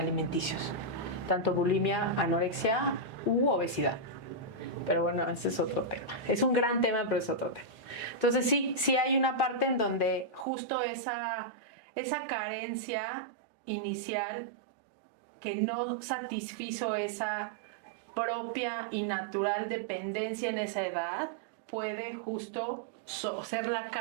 tanto bulimia, anorexia u obesidad. Pero bueno, ese es otro tema. Es un gran tema, pero es otro tema. Entonces sí hay una parte en donde justo esa carencia inicial que no satisfizo esa propia y natural dependencia en esa edad puede justo ser la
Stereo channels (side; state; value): left; drops out; at 10.5 s